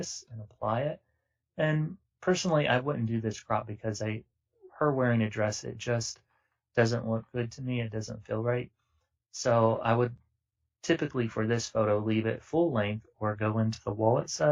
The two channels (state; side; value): identical; both; correlation 1.00